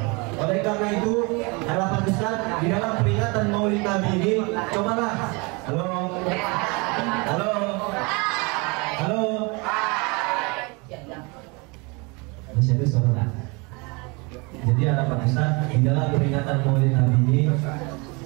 Oleh karena itu, harapan Ustaz di dalam peringatan Maulid Nabi ini, cobalah. Halo. Masih ada suara. Jadi harapan Ustaz di dalam peringatan Maulid Nabi ini,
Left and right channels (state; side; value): quieter; left; 28.8 dB